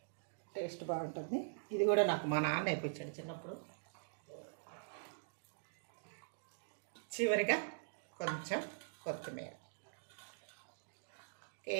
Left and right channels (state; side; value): silent; left; digital silence